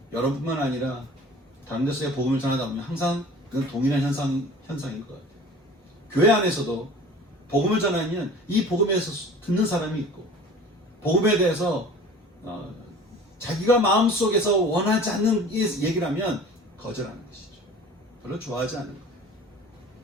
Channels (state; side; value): normal; both; correlation 0.43